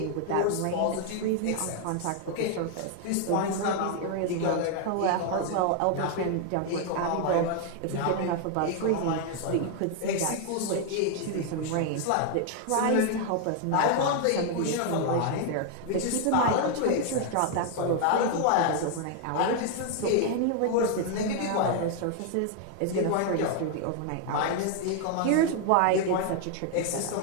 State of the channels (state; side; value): different; both; correlation 0.00